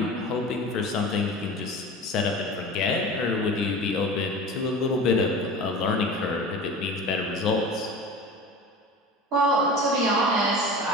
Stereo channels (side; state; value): both; normal; correlation 0.35